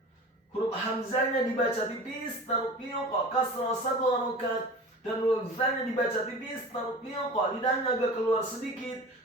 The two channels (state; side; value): normal; both; correlation 0.37